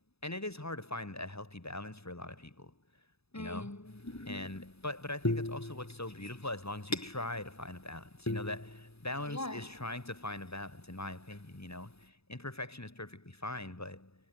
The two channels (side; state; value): right; late; 0.78 ms